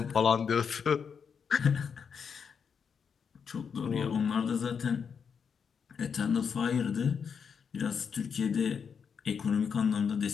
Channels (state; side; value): quieter; right; 6.6 dB